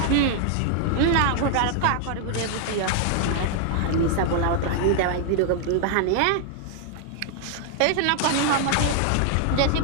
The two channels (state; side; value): different; both; correlation 0.00